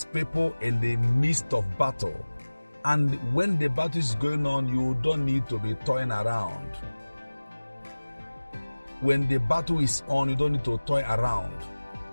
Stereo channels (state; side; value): inverted; both; correlation -1.00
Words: people in the midst of battle. And when the battle is going on, you don't need to be toying around. When the battle is on, you don't need to toy around.